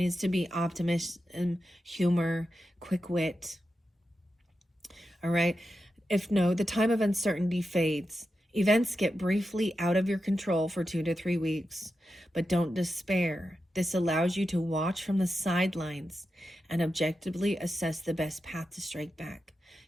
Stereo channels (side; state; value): both; normal; correlation 0.89